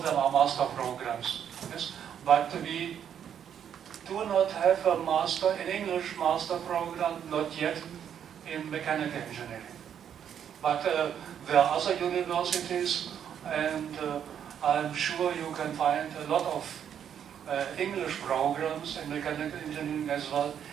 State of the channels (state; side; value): quieter; left; 8.8 dB